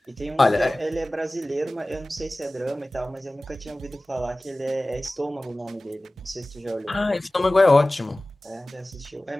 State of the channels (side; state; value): both; normal; correlation 0.97